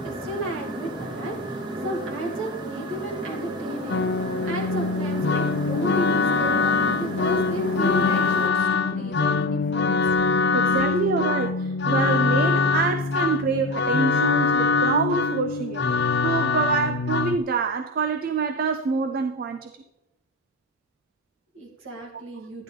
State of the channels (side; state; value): both; normal; correlation 0.23